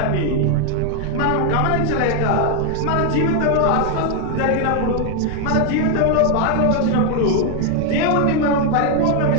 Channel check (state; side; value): different; both; correlation 0.00